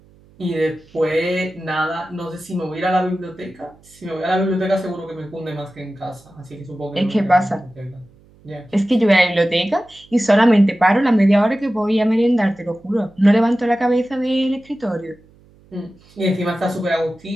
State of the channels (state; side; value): noise; right; hum, 28 dB below the sound